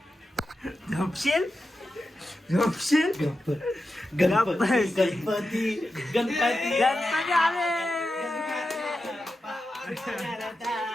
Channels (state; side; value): normal; both; correlation 0.90